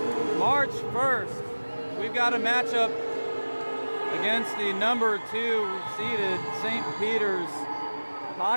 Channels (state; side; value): inverted; both; correlation -1.00